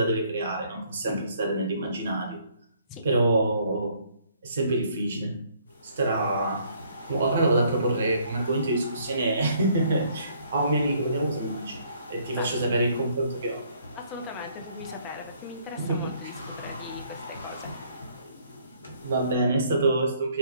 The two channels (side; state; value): both; inverted; correlation -0.64